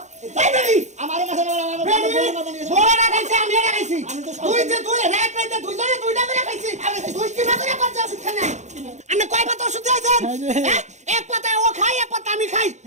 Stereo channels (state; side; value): late; left; 0.34 ms